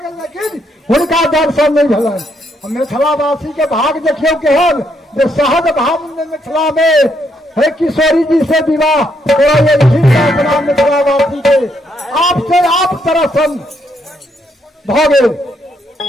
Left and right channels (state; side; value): normal; both; correlation 0.75